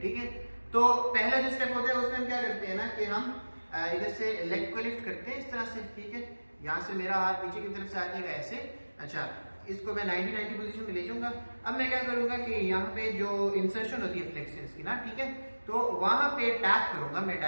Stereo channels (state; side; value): inverted; both; correlation -1.00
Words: ठीक है, तो पहला जो स्टेप होता है उसमें हम क्या करते हैं ना कि हम इधर से लेग को लिफ्ट करते हैं इस तरह से। ठीक है, यहाँ से मेरा हाथ नीचे की तरफ से आ जाएगा ऐसे। अच्छा, इसको मैं 90-90 पोजीशन में ले जाऊंगा। अब मैं क्या करूंगा कि यहाँ पे जो इंसर्शन होती है फ्लेक्सर्स की ना, ठीक है, तो वहां पे टैप करूंगा। मैं